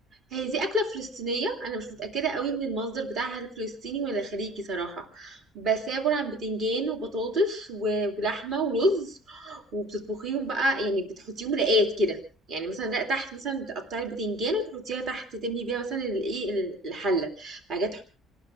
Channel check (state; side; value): normal; both; correlation 0.44